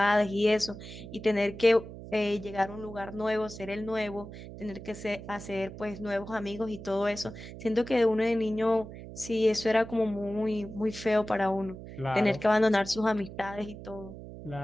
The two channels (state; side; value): noise; right; hum, 13 dB below the sound